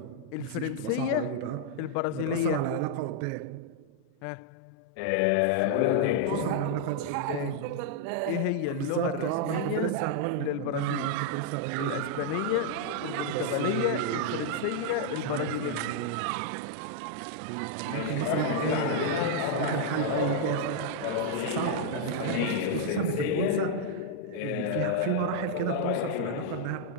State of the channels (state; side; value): different; both; correlation -0.01